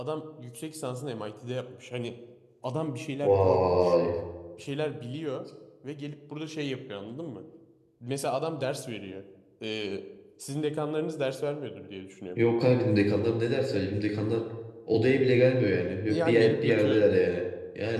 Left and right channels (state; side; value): identical; both; correlation 1.00